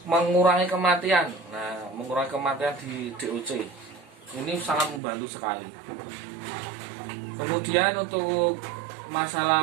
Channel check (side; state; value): left; drops out; at 5.0 s